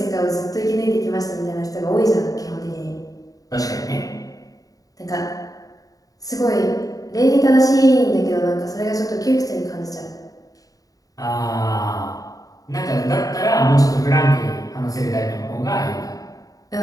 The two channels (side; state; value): right; late; 0.17 ms